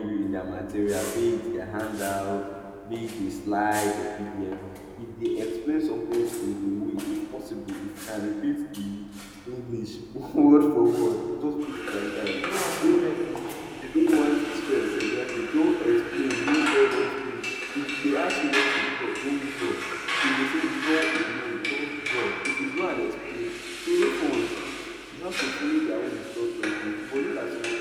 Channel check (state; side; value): identical; both; correlation 1.00